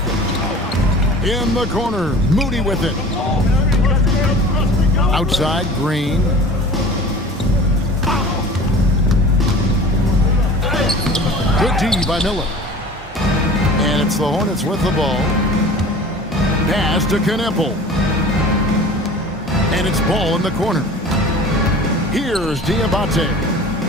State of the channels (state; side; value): normal; both; correlation 0.41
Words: In the corner, Moody with it. Outside, Green. Good D by Miller. And it's the Hornets with the ball. Pass to Knipple. And it's ball in the corner. Here's Diabate.